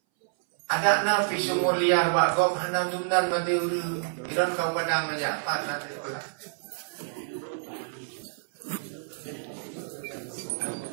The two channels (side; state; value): left; silent; 59 dB below the other